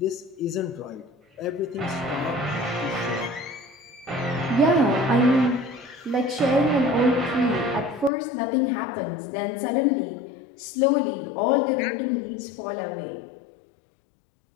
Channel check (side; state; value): right; drops out; at 8.1 s